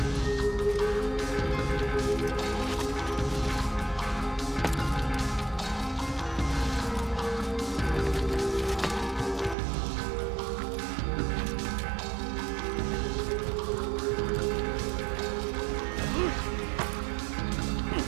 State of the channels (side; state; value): left; drops out; at 9.6 s